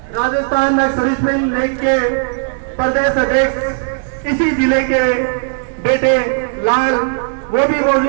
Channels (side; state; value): left; silent; digital silence